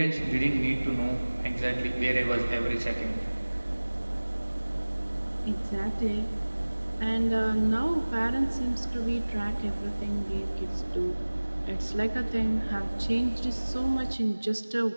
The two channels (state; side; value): inverted; both; correlation -1.00